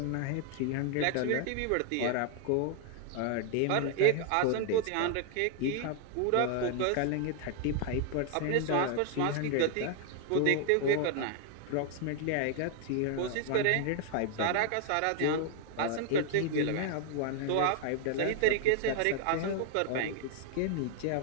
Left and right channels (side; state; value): both; different; correlation 0.00